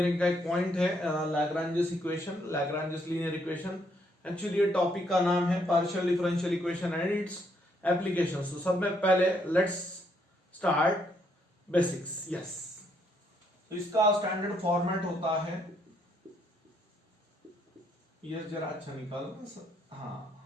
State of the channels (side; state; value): both; normal; correlation 0.72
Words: का एक पॉइंट है Lagrange's equation, Lagrange's linear equation. Actually ये टॉपिक का नाम है partial differential equation and it's applications. तो सब में पहले लेट्स स्टार्ट बेसिक्स। यस, तो इसका स्टैंडर्ड फॉर्मेट होता है, ये जरा अच्छा निकाल। हाँ,